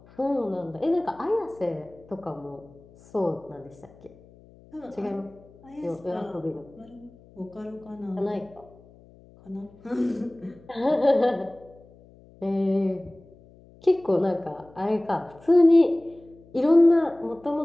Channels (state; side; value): noise; left; hum, 25 dB below the sound